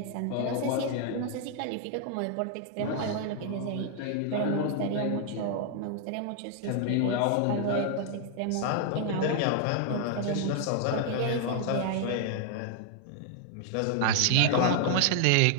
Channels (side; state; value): both; different; correlation 0.00